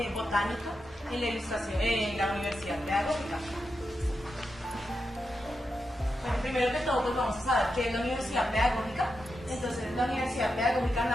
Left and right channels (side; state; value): both; normal; correlation 0.87